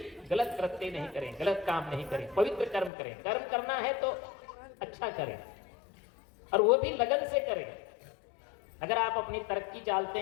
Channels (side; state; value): right; drops out; at 2.9 s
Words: गलत कृत्य नहीं करें, गलत काम नहीं करें, पवित्र कर्म करें। कर्म करना है तो अच्छा करें और वो भी लगन से करें। अगर आप अपनी तरक्की चाहते